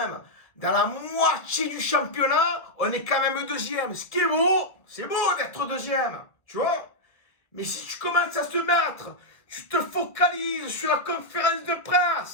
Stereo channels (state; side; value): late; right; 1.7 ms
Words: dans la moitié du championnat, on est quand même deuxième. Ce qui est beau, c'est beau d'être deuxième, tu vois. Mais si tu commences à te mettre, tu te focalises sur la conférence de